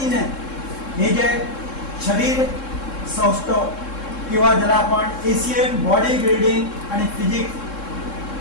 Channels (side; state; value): right; late; 3.7 ms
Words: हे जे शरीर सौष्ठव किंवा ज्याला आपण एशियन बॉडी बिल्डिंग आणि